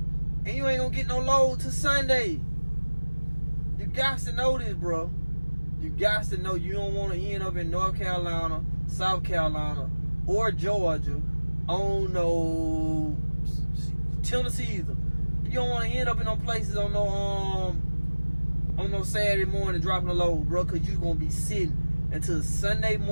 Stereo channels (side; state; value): both; inverted; correlation -1.00